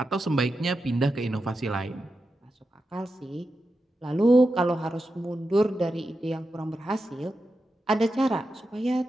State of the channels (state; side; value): normal; both; correlation 0.89